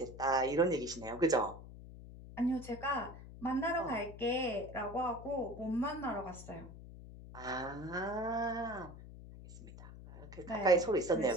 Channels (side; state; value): left; noise; hum, 15 dB below the sound